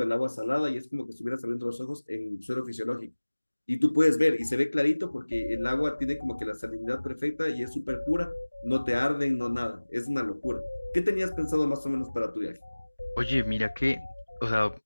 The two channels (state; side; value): inverted; both; correlation -1.00